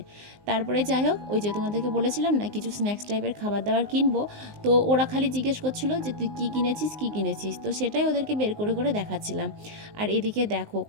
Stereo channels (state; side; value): late; left; 19 ms